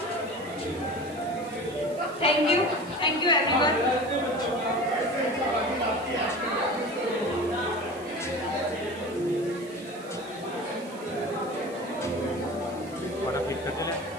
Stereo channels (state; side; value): noise; right; hiss, 21 dB below the sound